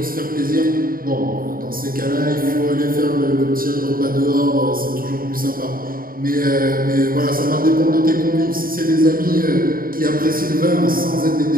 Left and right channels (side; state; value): left; late; 0.42 ms